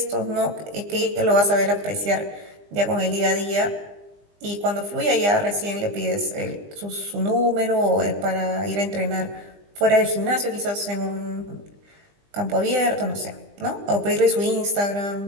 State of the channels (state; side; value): late; left; 20 ms